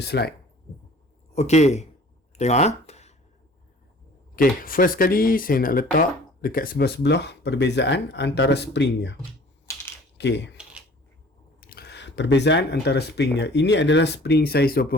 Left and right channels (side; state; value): both; normal; correlation 0.49